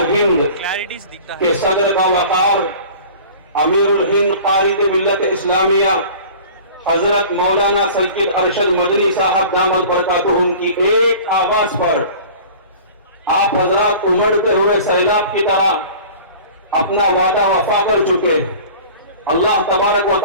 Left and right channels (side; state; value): both; inverted; correlation -0.42